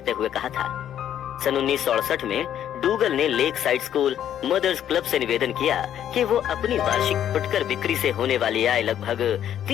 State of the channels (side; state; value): right; quieter; 10.4 dB